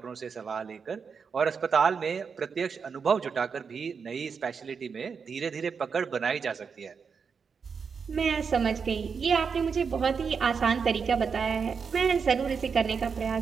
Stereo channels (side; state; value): left; quieter; 5.9 dB